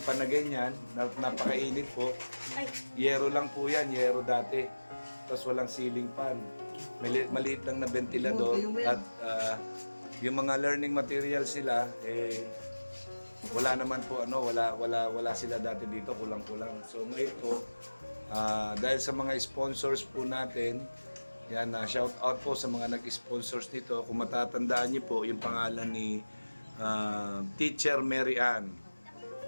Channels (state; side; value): inverted; both; correlation -1.00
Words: na ganyan, napakainit po. Yero lang po yan, yero dati. Tapos walang ceiling fan. Maliit lang na ventilador at yung mga learning materials sila wala naman po wala sila dati dito, kulang-kulang. So ngayon po dahil sa mga sponsors po natin, yan shout out po sa mga nag-sponsors dito. Kung matatandaan niyo po yung pangalan ni Teacher Mary Ann.